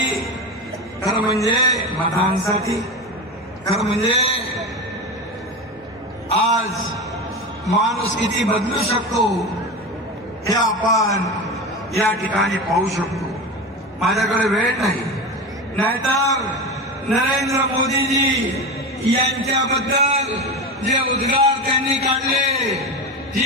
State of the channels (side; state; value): both; normal; correlation 0.24